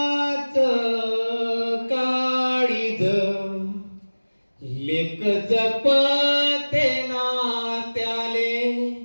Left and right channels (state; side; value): inverted; both; correlation -1.00